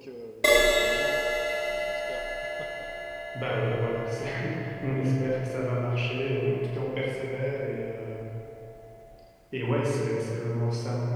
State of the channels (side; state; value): both; identical; correlation 1.00